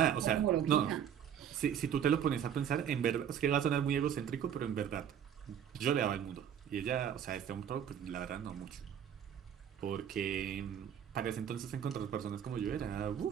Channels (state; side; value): quieter; left; 8.9 dB